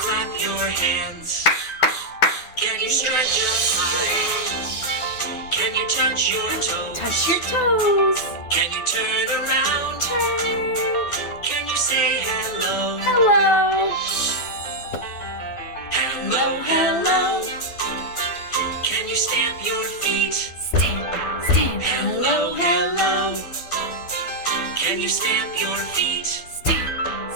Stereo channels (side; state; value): right; late; 12 ms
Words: your hands? Can you stretch up high? Can you touch your toes? Touch your toes. Can you turn around? Turn. Can you say hello? Hello. Hello, hello. Can you stamp your feet? Stamp, stamp. Hello, hello. Can you stamp your feet? Stamp,